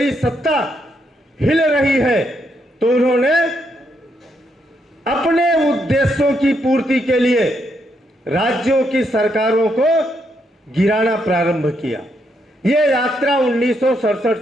सत्ता हिल रही है तो उन्होंने अपने उद्देश्यों की पूर्ति के लिए राज्यों की सरकारों को गिराना प्रारंभ किया। यह यात्रा 1967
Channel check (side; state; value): both; normal; correlation 0.77